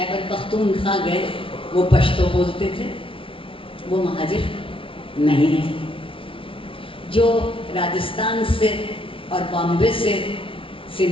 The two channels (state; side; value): late; right; 0.25 ms